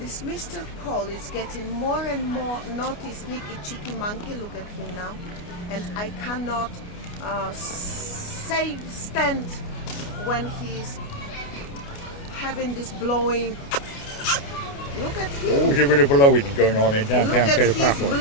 Mr. Paul is getting more and more naughty, sneaky, cheeky monkey. Look at him now. And I cannot stand when he's having this blowing. Look at him. Oh, there's a bit of blowing going on in downtown Look at Paphos. his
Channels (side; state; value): right; late; 29 ms